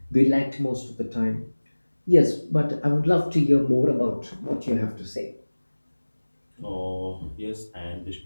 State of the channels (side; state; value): both; inverted; correlation -1.00